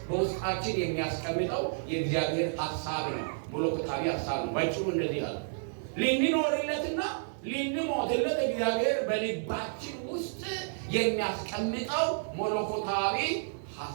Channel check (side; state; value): left; silent; 57 dB below the other